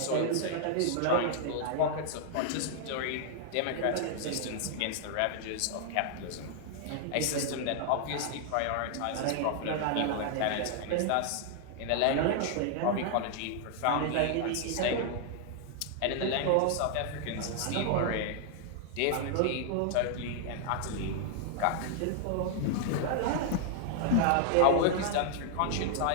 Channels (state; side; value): different; both; correlation 0.00